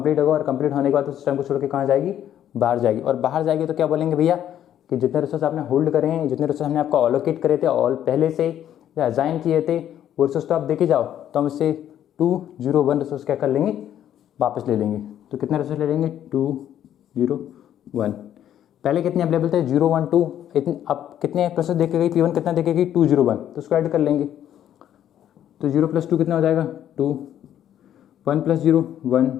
होगा और कंप्लीट होने के बाद सिस्टम को छोड़ के कहाँ जाएगी, बाहर जाएगी। और बाहर जाएगी तो क्या बोलेंगे भैया कि जितने रिसोर्स आपने होल्ड करे हैं, जितने रिसोर्स हमने आपको अलोकेट करे थे ऑल पहले से या असाइन किए थे, वो रिसोर्स तो आप देखे जाओ, तो हम इससे 2, 0, 1 रिसोर्स क्या कर लेंगे, वापस ले लेंगे। तो कितने रिसोर्स ले लेंगे, 2, 0, 1। पहले कितने अवेलेबल थे, 0, 1, 2, इतने, अब कितने प्रोसेस देखे गई, P1 कितना देखे गई, 2, 0, 1, तो उसको ऐड कर लेंगे। तो 0 + 2 कितना हो जाएगा, 2, 1 + 0, 1,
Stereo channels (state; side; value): quieter; right; 10.8 dB